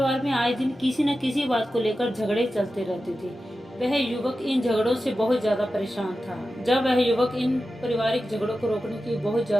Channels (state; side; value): normal; both; correlation 0.92